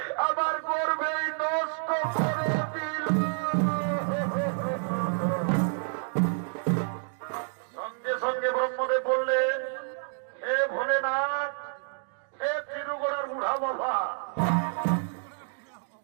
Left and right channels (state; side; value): silent; left; 59 dB below the other